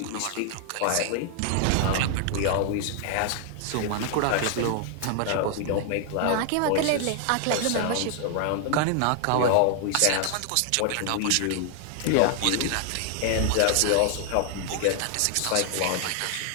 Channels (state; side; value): different; both; correlation 0.00